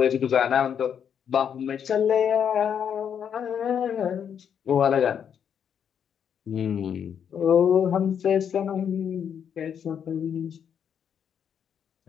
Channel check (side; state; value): right; quieter; 8.1 dB